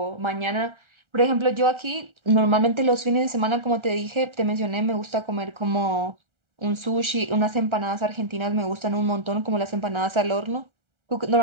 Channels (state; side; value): late; left; 1.3 ms